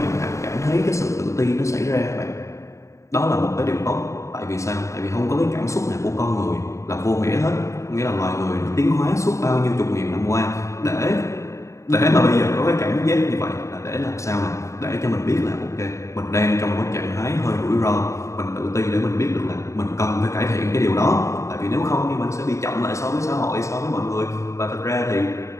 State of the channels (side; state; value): right; late; 0.14 ms